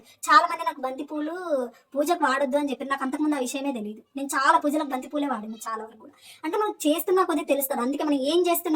చాలా మంది నాకు బంతి పూలు పూజకు వాడొద్దు అని చెప్పి నాకు అంతకుముందు ఆ విషయమే తెలియదు. నేను చాలా పూజలకు బంతి పూలే వాడాను చాలా వరకు కూడా. అంటే మనం చేస్తున్నా కొద్దిగా తెలుస్తుంది. అందుకే మనం ఏం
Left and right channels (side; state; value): both; identical; correlation 1.00